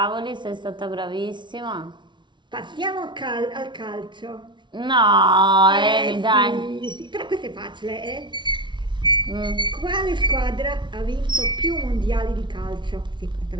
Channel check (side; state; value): left; late; 0.23 ms